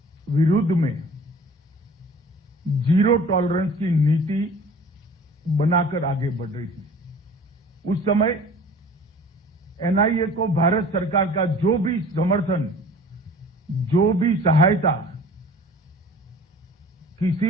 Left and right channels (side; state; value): both; normal; correlation 0.46